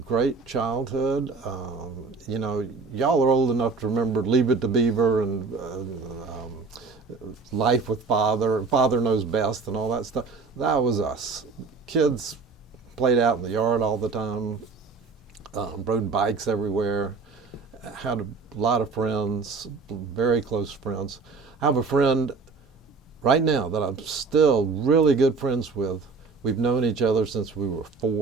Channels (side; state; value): left; quieter; 4.4 dB